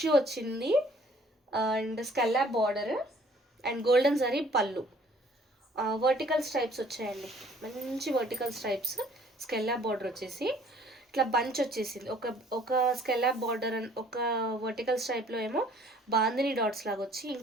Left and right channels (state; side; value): normal; both; correlation 0.57